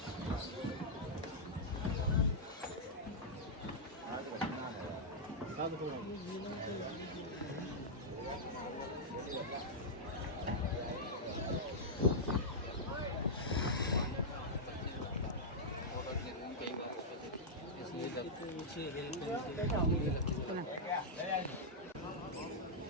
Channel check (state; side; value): normal; both; correlation -0.07